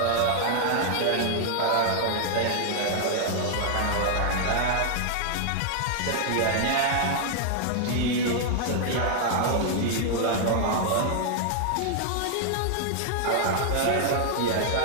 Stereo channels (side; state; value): both; different; correlation 0.00